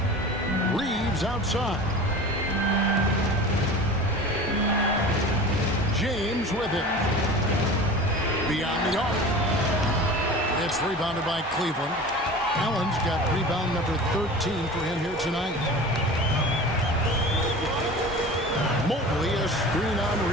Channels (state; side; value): normal; both; correlation 0.36